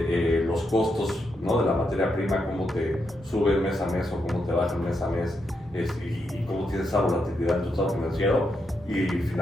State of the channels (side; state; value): both; normal; correlation 0.82